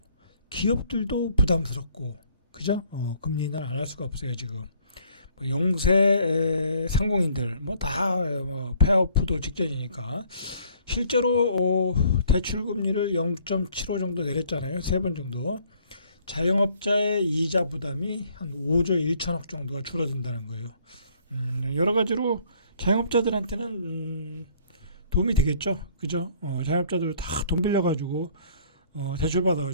기업들도 부담스럽고 그죠? 금리 인하를 안 할 수가 없어요 지금. 뭐 영세 상공인들 뭐 다 폐업도 직전이니까 실제로 대출 금리를 0.75 정도 내렸잖아요. 3번 정도. 자영업자의 이자 부담이 한 5조 1천억 정도가 줄어든다는 거예요. 여러 가지로 자영업자들한테는 도움이 되겠죠. 그죠? 자영업자들 다 돈 빌려가지고 대출받아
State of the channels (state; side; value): inverted; both; correlation -0.60